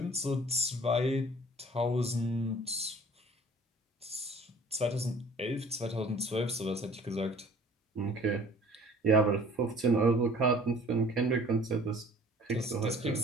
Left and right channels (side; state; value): both; normal; correlation 0.50